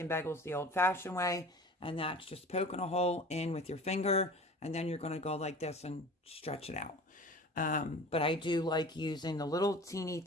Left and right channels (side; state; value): both; normal; correlation 0.40